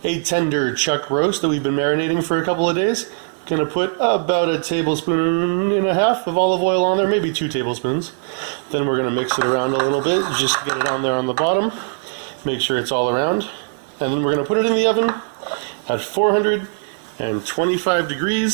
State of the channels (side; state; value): left; silent; digital silence